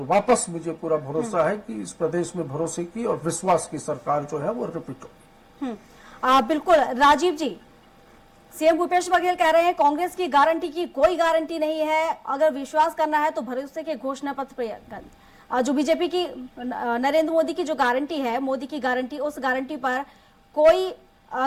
वापस मुझे पूरा भरोसा है कि इस प्रदेश में भरोसे की और विश्वास की सरकार जो है वो रिपीट होगी। बिल्कुल राजीव जी, सीएम भूपेश बघेल कह रहे हैं कांग्रेस की गारंटी की कोई गारंटी नहीं है, अगर विश्वास करना है तो भरोसे के घोषणा पत्र जो बीजेपी की नरेंद्र मोदी की जो गारंटी है, मोदी की गारंटी, उस गारंटी पर कोई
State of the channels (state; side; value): identical; both; correlation 1.00